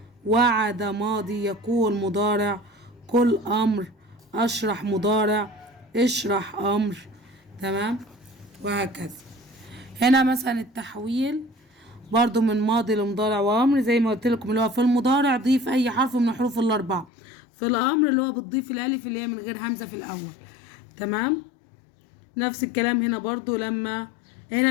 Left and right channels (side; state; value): right; drops out; at 17.1 s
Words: وعد ماضي، يقول مضارع، قل امر، اشرح مضارع، اشرح امر. تمام. وهكذا. هنا مثلا التحويل برضو من ماضي لمضارع وامر زي ما قلت لكم، اللي هو في المضارع ضيف اي حرف من الحروف الاربعه، في الامر اللي هو بتضيف الالف اللي هي من غير همزه في الاول. تمام. نفس الكلام هنا برضو، لما هنا